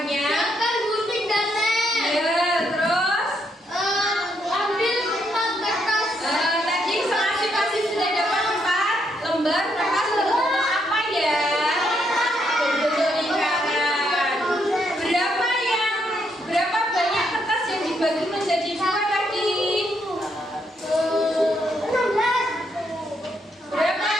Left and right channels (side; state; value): both; normal; correlation 0.76